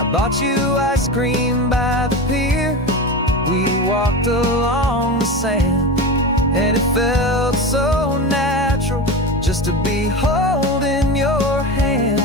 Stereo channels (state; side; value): normal; both; correlation 0.24